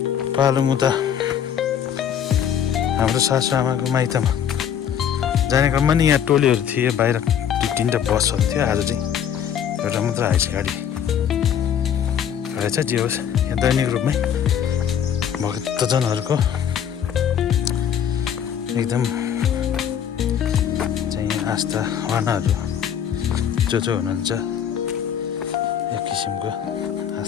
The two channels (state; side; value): quieter; right; 8.9 dB